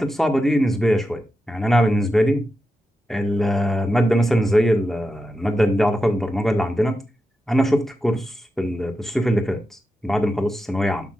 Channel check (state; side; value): normal; both; correlation 0.89